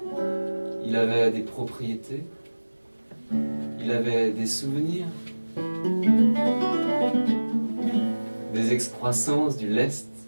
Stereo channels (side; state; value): both; inverted; correlation -1.00